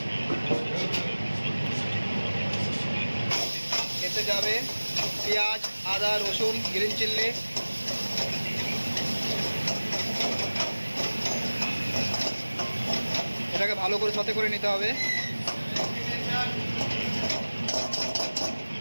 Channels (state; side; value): inverted; both; correlation -1.00